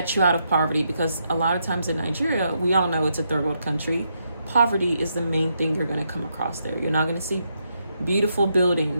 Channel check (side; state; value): both; inverted; correlation -0.80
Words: you out of poverty. Because a lot of times in Nigeria, we all know it's a third world country, poverty is the main thing you're going to come across there. You're not going to see beautiful